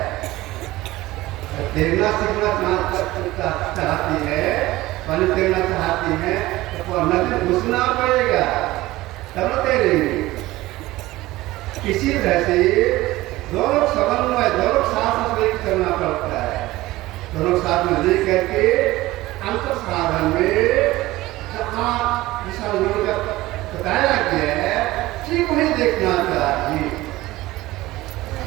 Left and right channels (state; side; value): quieter; left; 18.0 dB